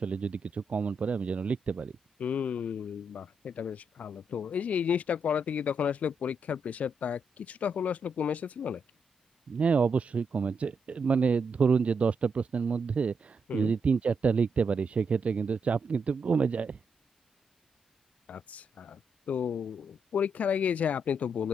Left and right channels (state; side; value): normal; both; correlation 0.80